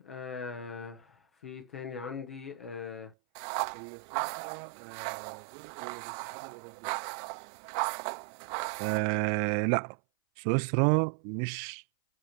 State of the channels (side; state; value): left; drops out; at 3.2 s